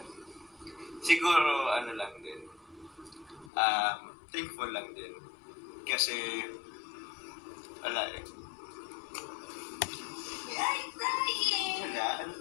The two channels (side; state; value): right; drops out; at 3.5 s